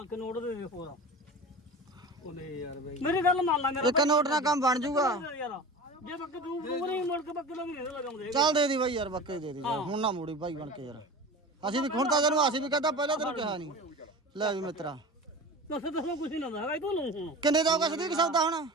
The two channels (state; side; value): normal; both; correlation 0.33